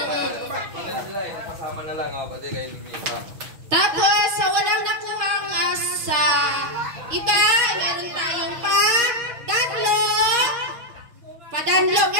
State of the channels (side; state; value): left; late; 6.3 ms